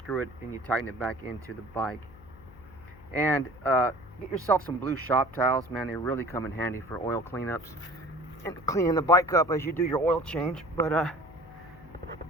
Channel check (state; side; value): noise; left; hum, 21 dB below the sound